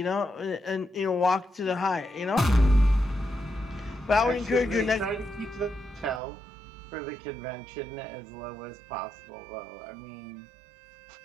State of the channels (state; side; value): drops out; left; at 6.2 s